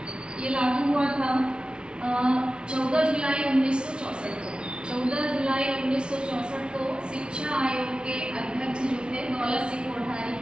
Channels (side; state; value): left; late; 0.056 ms